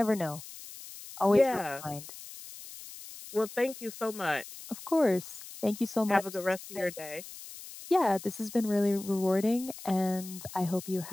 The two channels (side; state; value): left; noise; hiss, 14 dB below the sound